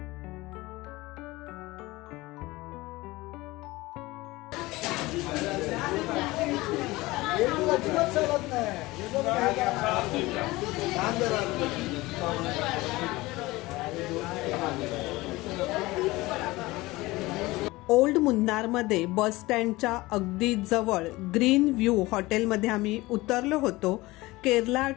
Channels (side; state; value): right; quieter; 20.3 dB